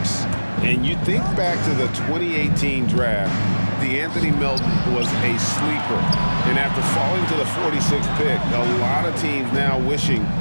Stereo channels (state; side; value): inverted; both; correlation -1.00